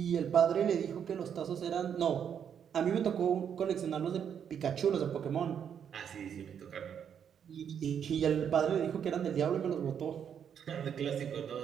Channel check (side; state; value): left; quieter; 8.2 dB